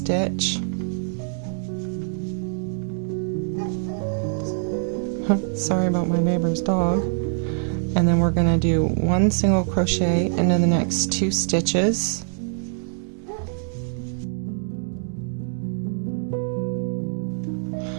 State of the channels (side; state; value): left; silent; 61 dB below the other